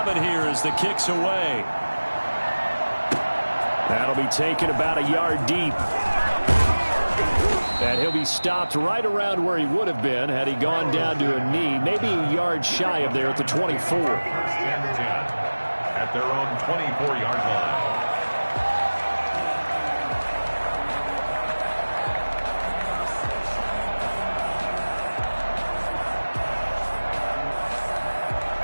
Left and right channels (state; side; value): inverted; both; correlation -1.00